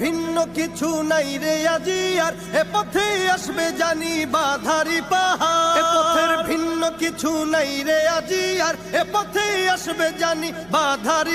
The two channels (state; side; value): noise; right; hum, 26 dB below the sound